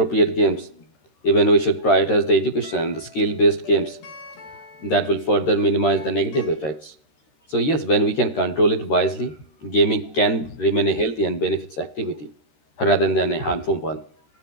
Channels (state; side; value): late; right; 13 ms